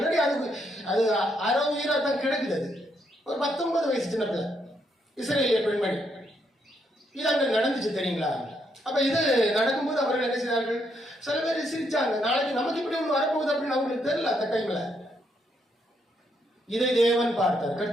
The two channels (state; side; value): normal; both; correlation 0.76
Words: அது அரை உயிரா தான் கிடக்குது. அது ஒரு 19 வயசு சின்ன பிள்ளை, இஸ்ரேலிய பெண்மணி. இது அங்க நடந்துச்சு தெரியுங்களா? அப்ப இது நடக்கும்போது அவர்கள் என்ன செய்தார்கள்? சில பேர் சிரிச்சாங்க. நாளைக்கு நமக்கு இப்படி ஒண்ணு வரப்போகுது அப்படின்னு அவங்களுக்கு தெரியல. அந்த டைம்ல இதை தேவன் பார்த்தார்.